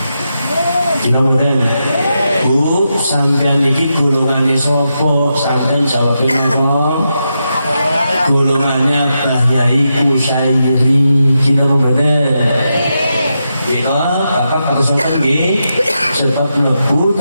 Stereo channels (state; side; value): inverted; both; correlation -0.86